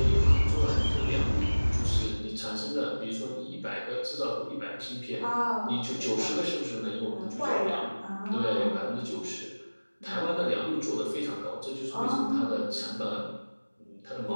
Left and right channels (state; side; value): inverted; both; correlation -1.00